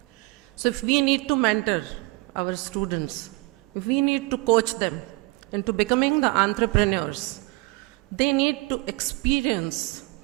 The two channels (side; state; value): left; quieter; 25.5 dB